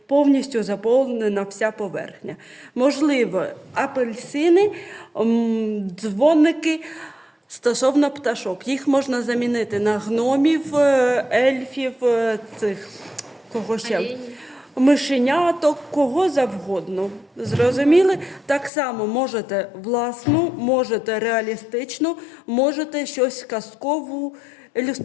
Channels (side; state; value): right; drops out; at 18.7 s